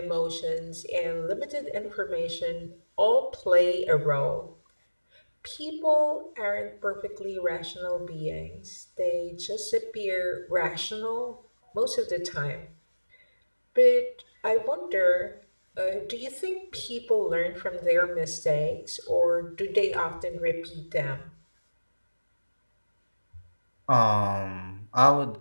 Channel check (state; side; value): inverted; both; correlation -1.00